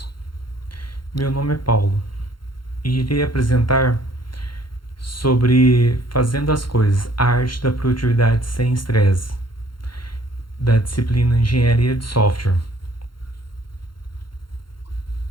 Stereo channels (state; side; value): late; right; 0.72 ms